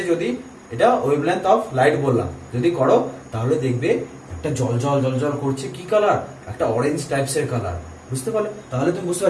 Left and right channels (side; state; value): both; identical; correlation 1.00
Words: যদি এটা ওয়েভলেন্থ অফ লাইট বললাম, যদি করো তাহলে দেখবে একটা জল জল জল জল করছে, কি কালার, একটা অরেঞ্জ টাইপস এর কালার। বুঝতে পারলে, তাহলে তুমি বুঝতে